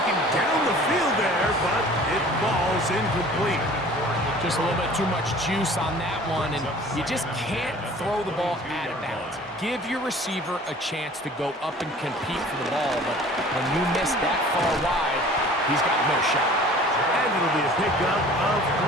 down the field there, but it falls incomplete. Just a little bit too much juice on that one, and you just can't throw the ball out of bounds. Give your receiver a chance to go up and compete for the ball, but when you miss that far wide, he's got no shot. And it'll be a pickup of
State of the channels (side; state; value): both; normal; correlation 0.47